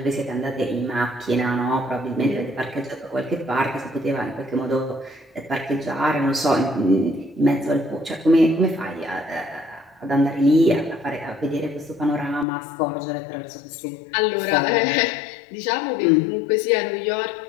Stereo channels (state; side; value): drops out; right; at 12.5 s